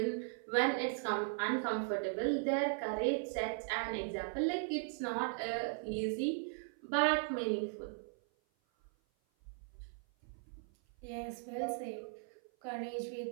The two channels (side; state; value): left; silent; 52 dB below the other